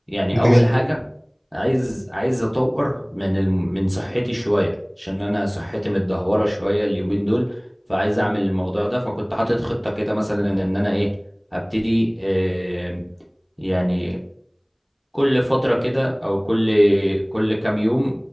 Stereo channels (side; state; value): both; identical; correlation 1.00